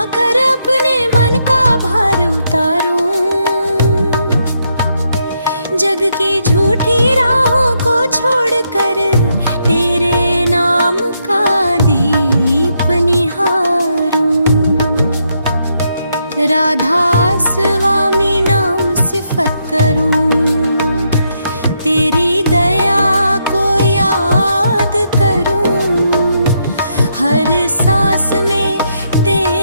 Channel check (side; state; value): both; inverted; correlation -0.78